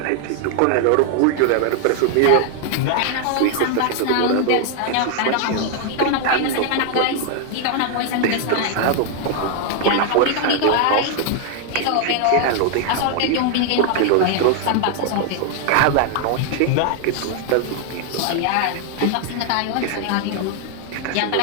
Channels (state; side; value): different; both; correlation 0.00